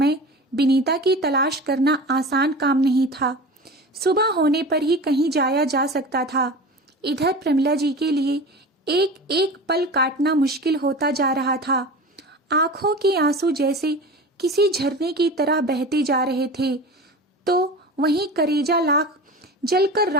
विनीता की तलाश करना आसान काम नहीं था। सुबह होने पर ही कहीं जाया जा सकता था। इधर प्रमिला जी के लिए एक एक पल काटना मुश्किल होता जा रहा था। आंखों के आंसू जैसे किसी झरने की तरह बहते जा रहे थे, तो वहीं करेजा लाख जलकर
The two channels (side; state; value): both; normal; correlation 0.33